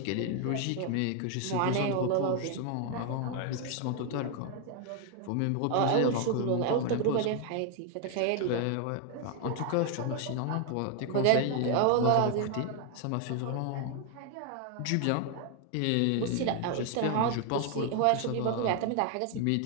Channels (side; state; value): both; different; correlation 0.00